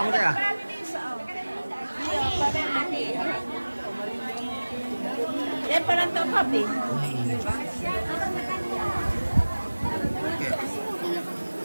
muda ya. Dia pernah tahu kopi.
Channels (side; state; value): both; inverted; correlation -1.00